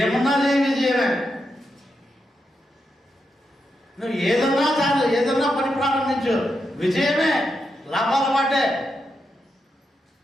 చేయ విజయమే. నువ్వు ఏదన్నా పని ప్రారంభించు, విజయమే, లాభాల మాటే.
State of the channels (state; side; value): normal; both; correlation 0.85